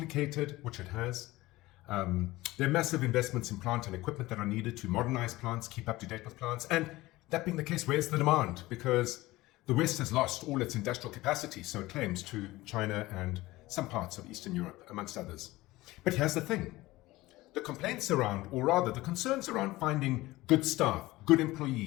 which it has. There are massive investments in plant and equipment that are needed to modernize plants, keep up to date with plants. And that being the case, where's the demand? Because the West has lost all its industrial capacity, so it claims, to China and some parts of Eastern Europe, amongst others. But here's the thing. The complaints around, or rather the concerns around finding good staff, good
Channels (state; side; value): quieter; right; 18.8 dB